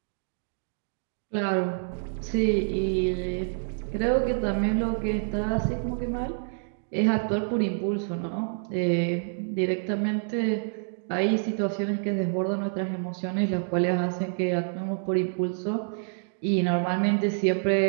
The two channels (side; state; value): left; silent; digital silence